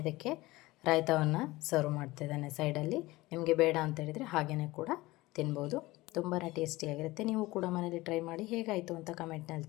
ಇದಕ್ಕೆ ರಾಯ್ತಾವನ್ನು ಸರ್ವ್ ಮಾಡ್ತಿದ್ದೇನೆ ಸೈಡಲ್ಲಿ. ನಿಮಗೆ ಬೇಡ ಅಂತ ಹೇಳಿದರೆ ಹಾಗೆಯೇ ಕೂಡ ತಿನ್ಬೋದು. ತುಂಬಾ ಟೇಸ್ಟಿಯಾಗಿರುತ್ತೆ. ನೀವು ಕೂಡ ಮನೇಲಿ ಟ್ರೈ ಮಾಡಿ ಹೇಗಾಯಿತು ಅಂತ ಕಮೆಂಟ್ನಲ್ಲಿ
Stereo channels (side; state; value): right; quieter; 19.8 dB